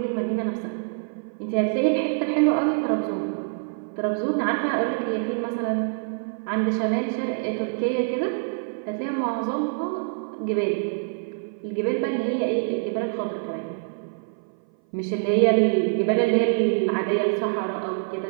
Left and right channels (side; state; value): left; silent; 58 dB below the other